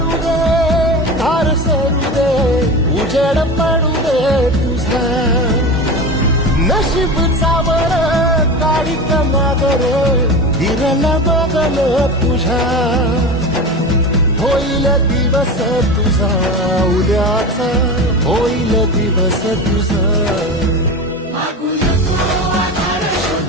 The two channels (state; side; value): normal; both; correlation 0.27